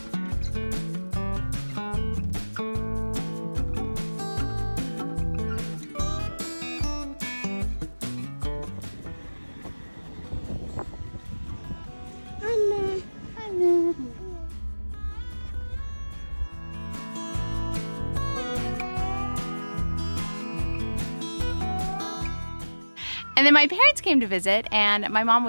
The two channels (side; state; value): both; inverted; correlation -1.00